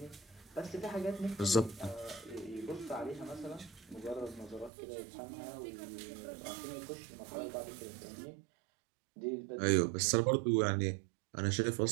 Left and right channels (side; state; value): left; drops out; at 4.7 s